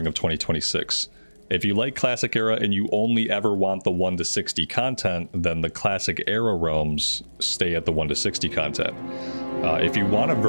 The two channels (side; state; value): both; inverted; correlation -1.00